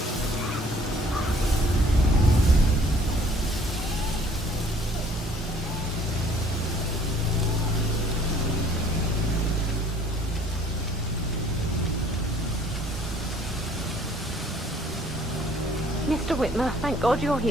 Mr. Whitmer, thank God you're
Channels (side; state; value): both; normal; correlation 0.57